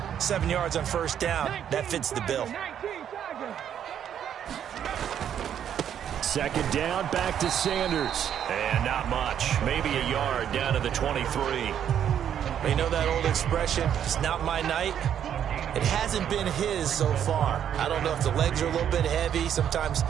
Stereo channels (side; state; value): left; quieter; 9.4 dB